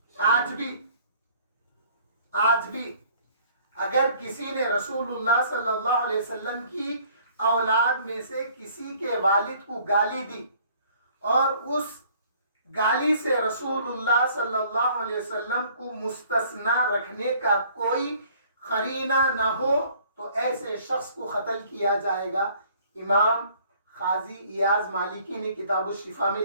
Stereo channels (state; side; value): inverted; both; correlation -0.57